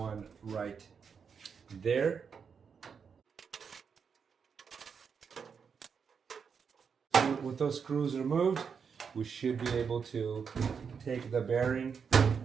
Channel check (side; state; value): left; quieter; 6.3 dB